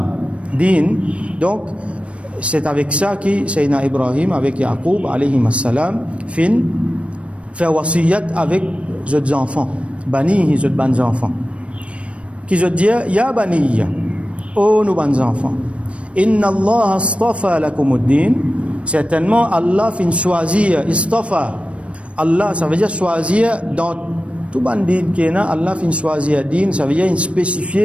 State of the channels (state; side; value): late; left; 0.062 ms